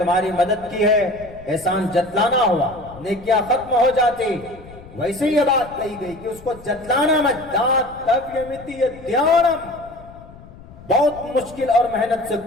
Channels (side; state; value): left; noise; rumble, 19 dB below the sound